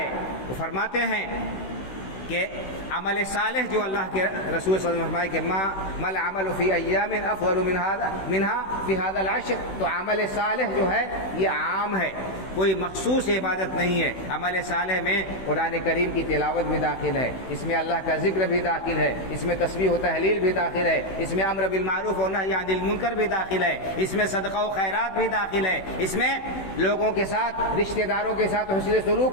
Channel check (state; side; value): late; right; 16 ms